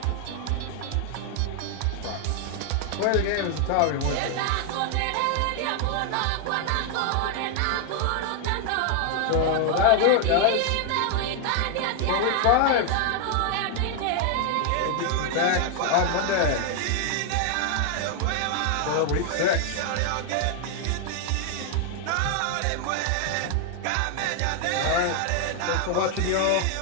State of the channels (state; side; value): different; both; correlation 0.00